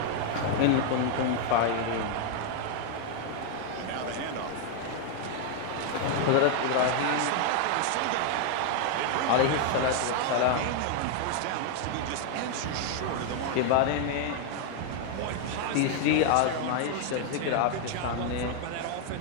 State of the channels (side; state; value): both; different; correlation 0.00